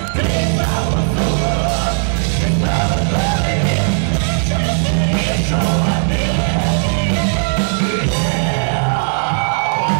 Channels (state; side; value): silent; left; digital silence